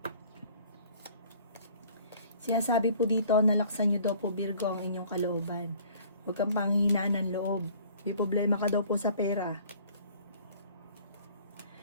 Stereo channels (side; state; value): both; inverted; correlation -0.53